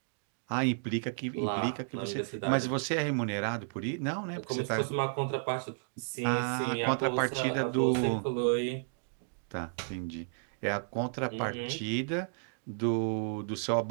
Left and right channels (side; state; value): left; silent; digital silence